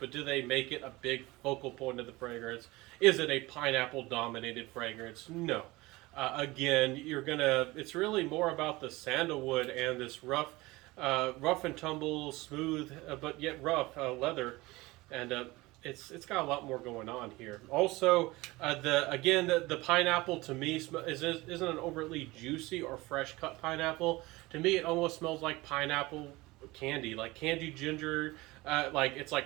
do they make it a big focal point of the fragrance? Is it a pineapple dominated fragrance? No. Again, it's really more about the sandalwood and this rough and tumble, smooth, but yet rough leather. And it's got a lot more going on here. Also, the pineapple to me isn't an overtly juicy or fresh cut pineapple. To me, it almost smells like pineapple candy, like candied ginger. It's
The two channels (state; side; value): quieter; left; 21.2 dB